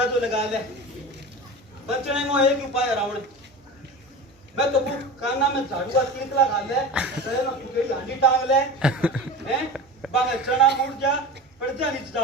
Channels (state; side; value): normal; both; correlation 0.31